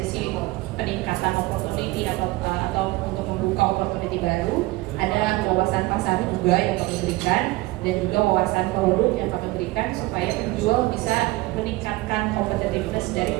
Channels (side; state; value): left; quieter; 20.5 dB